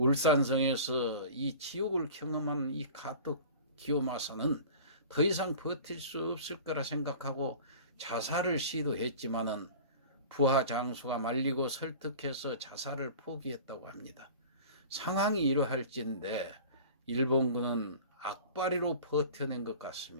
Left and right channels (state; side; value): inverted; both; correlation -0.40